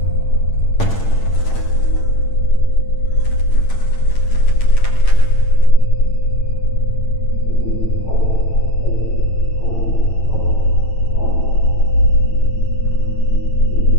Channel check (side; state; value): right; late; 9.0 ms